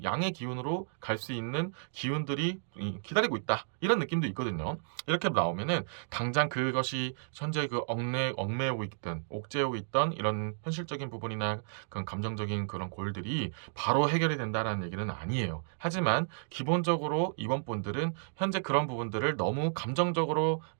양의 기운으로 갈 수 있는 기운들이 기다리고 있다. 이런 느낌도 있거든요. 이렇게 나오면은 당장 그것이 현재 그 얽매이고 있던 옥죄고 있던 이런 현실적인 부분이나 그런 감정적인 그런 골들이 바로 해결이 된다라는 얘기는 아니에요. 하지만 기본적으로 이번 분들은 현재 그런 부분들을 너무 감정적으로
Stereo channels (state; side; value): silent; left; digital silence